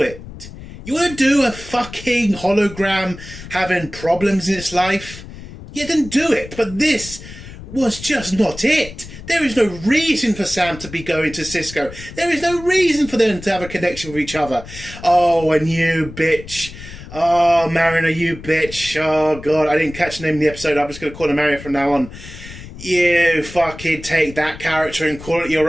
it. You want to do a fucking hologram having problems in its life? Yeah, then do it. But this was just not it. There is no reason for Sam to be going to Sisko. There is no reason for them to have a connection with each other. Oh, and you bitch. Oh, Mariner, you bitch. Oh, God, I didn't catch the name of the episode. I'm just going to call her Mariner from now on. You fucking take that character and call it your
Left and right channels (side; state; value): left; noise; rumble, 14 dB below the sound